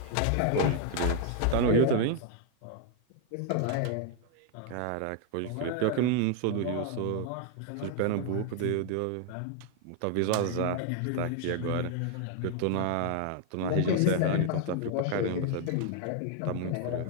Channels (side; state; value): both; different; correlation 0.00